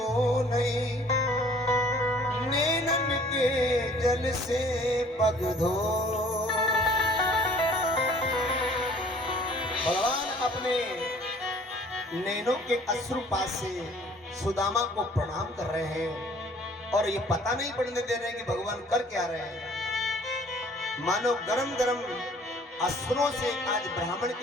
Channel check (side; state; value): both; normal; correlation 0.54